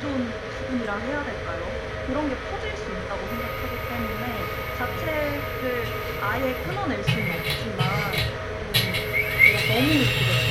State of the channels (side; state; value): both; identical; correlation 1.00